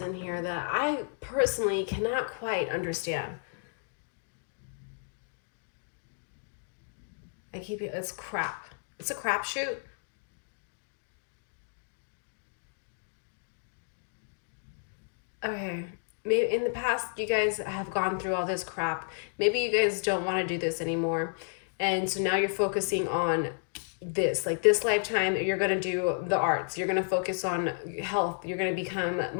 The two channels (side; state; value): right; silent; digital silence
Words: in here that I personally cannot quite understand. It's crap. It's a crapshoot. Okay. Maybe in the past you guys have gone through all this crap. Maybe you guys don't want to do this anymore. And so now you're focusing on this. Like this lifetime, you're going to do the arts. You're going to focus on health. You're going to become